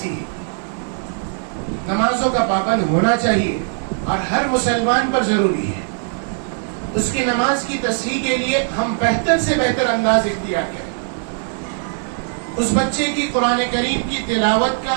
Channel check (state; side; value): silent; left; 63 dB below the other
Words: ہی نمازوں کا پابند ہونا چاہیے اور ہر مسلمان پر ضروری ہے. اس کی نماز کی تصحیح کے لیے ہم بہتر سے بہتر انداز اختیار کریں. اس بچے کی قرآن کریم کی تلاوت